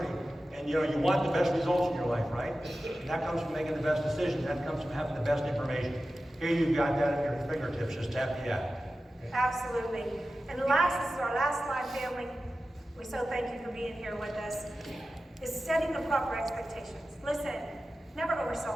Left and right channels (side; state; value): both; normal; correlation 0.94